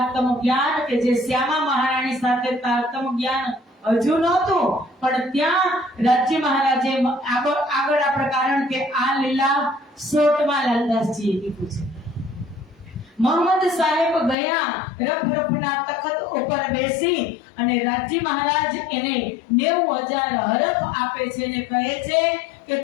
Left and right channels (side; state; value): right; drops out; at 14.4 s